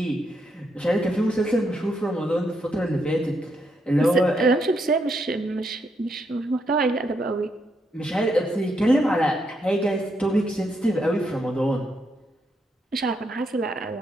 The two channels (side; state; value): both; normal; correlation 0.78